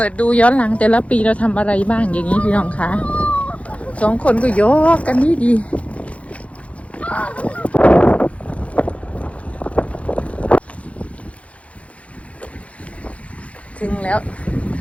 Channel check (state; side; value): late; right; 0.064 ms